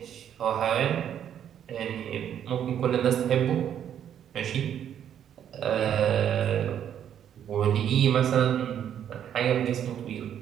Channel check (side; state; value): left; quieter; 9.6 dB